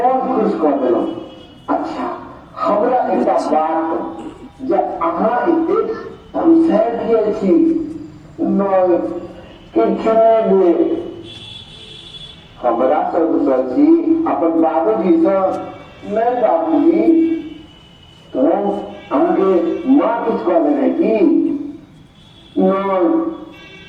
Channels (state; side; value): identical; both; correlation 1.00